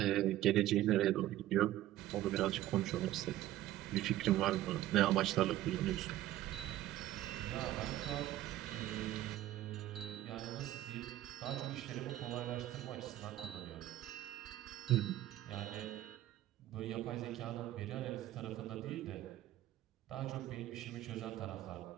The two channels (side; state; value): left; quieter; 14.3 dB